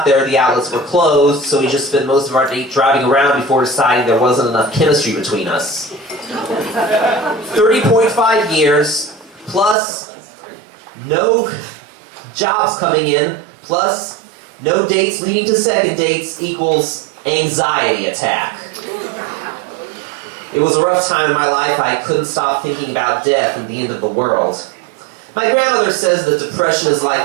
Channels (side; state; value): left; drops out; at 9.8 s